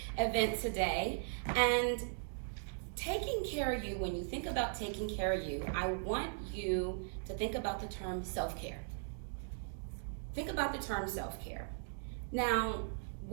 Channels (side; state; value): left; silent; digital silence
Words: event today. And taking care of you, when you think about taking care of you, I want you to think about the term self-care. Think about the term self-care. Now,